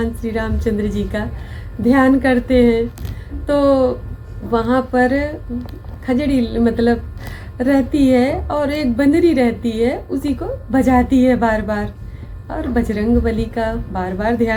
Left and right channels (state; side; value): identical; both; correlation 1.00